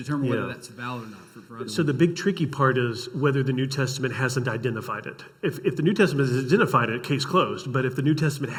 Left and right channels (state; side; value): identical; both; correlation 1.00